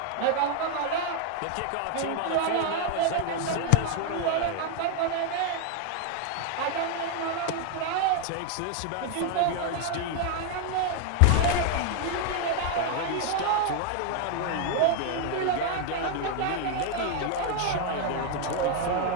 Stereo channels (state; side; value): different; both; correlation 0.00